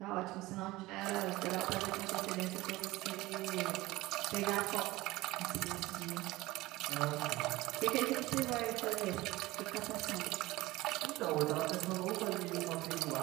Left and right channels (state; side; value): quieter; left; 19.3 dB